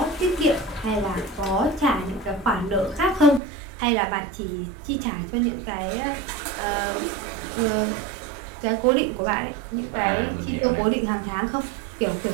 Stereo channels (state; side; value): drops out; left; at 3.4 s